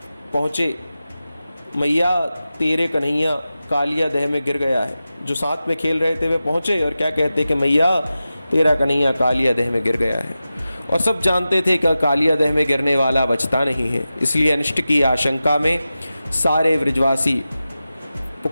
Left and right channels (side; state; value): both; inverted; correlation -0.94